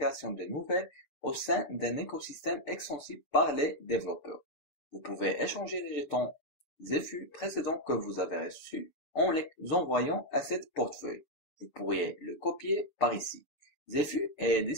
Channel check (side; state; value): right; late; 7.0 ms